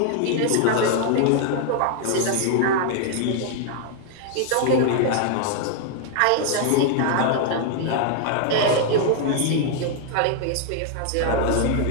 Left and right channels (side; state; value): both; different; correlation 0.00